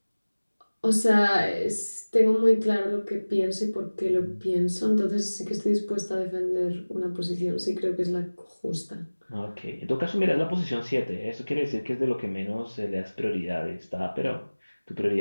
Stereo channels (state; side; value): inverted; both; correlation -1.00